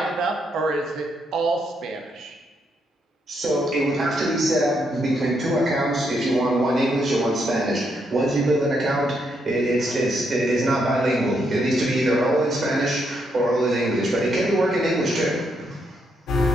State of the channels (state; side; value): normal; both; correlation 0.77